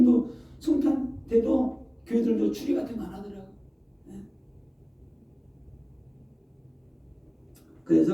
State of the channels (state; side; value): identical; both; correlation 1.00